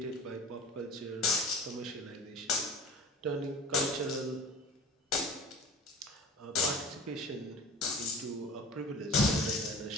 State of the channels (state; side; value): normal; both; correlation 0.38